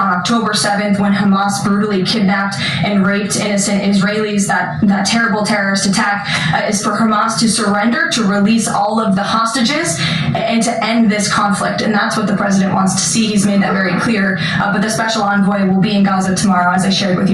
October 7th when Hamas brutally kidnapped and raped innocent Israelis, that terrible terrorist attack, is for Hamas to surrender, to release all of the hostages, and to end this conflict. And that's what the president wants to see. He's made that very clear. But the special envoy will be in Gaza tomorrow, as I shared with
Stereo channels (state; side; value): identical; both; correlation 1.00